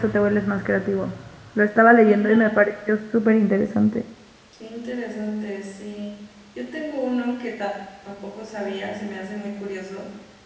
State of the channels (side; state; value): both; identical; correlation 1.00